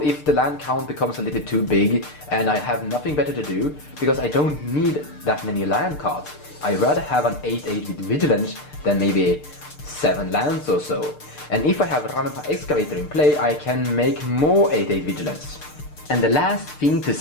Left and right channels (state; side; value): late; right; 6.7 ms